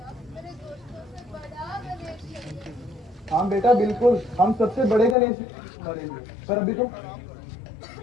हाँ बेटा बिल्कुल, हम सबसे बड़े गणेश मरेंगे। पर अभी तो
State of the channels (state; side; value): drops out; right; at 5.2 s